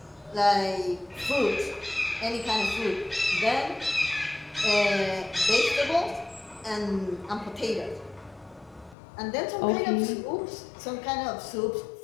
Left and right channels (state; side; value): drops out; right; at 9.0 s